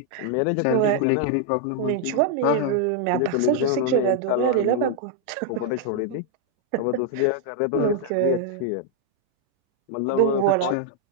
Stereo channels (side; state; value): both; different; correlation 0.00